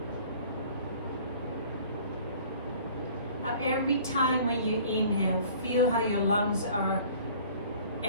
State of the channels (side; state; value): both; inverted; correlation -0.50